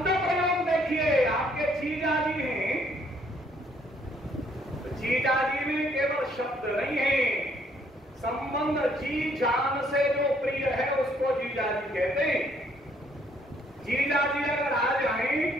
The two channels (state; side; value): normal; both; correlation 0.66